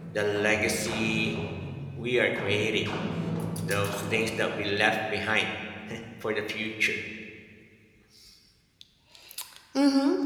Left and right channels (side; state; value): both; identical; correlation 1.00